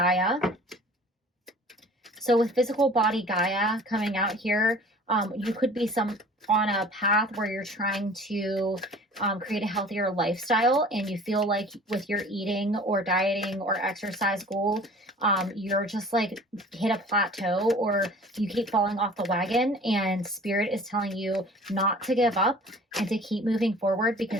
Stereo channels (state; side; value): normal; both; correlation 0.46